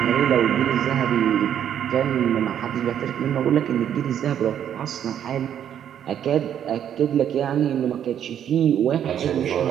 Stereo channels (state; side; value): quieter; left; 9.6 dB